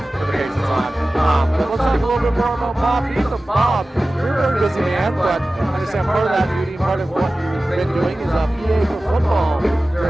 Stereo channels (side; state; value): both; normal; correlation 0.96